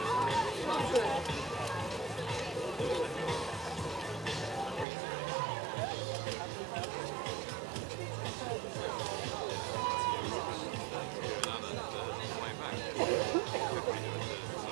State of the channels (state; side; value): drops out; left; at 4.9 s